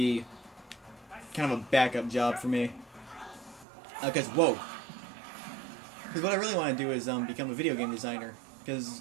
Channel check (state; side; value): drops out; left; at 3.7 s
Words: kind of a backup job for me. Because what I really want to do is become a video game designer. Because,